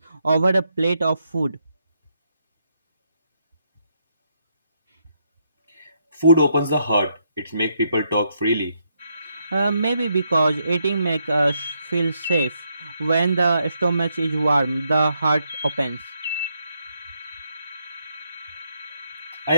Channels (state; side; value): inverted; both; correlation -0.77